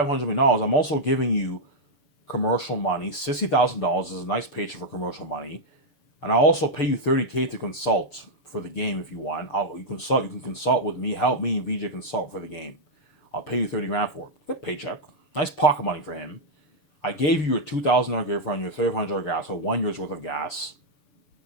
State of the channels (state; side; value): late; right; 6.8 ms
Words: million, I'm also giving you commercial money. $60,000 is a nice paycheck for commercial money. And I'll also pay you $30K to consult for the game if you want. You can consult with me, help me and VJ consult for the game. I'll pay you $30,000 for it. Good paycheck. Nice pocket money for him. I gave you your $2,000 gift on your $300 gas, so 1 year's worth of gas.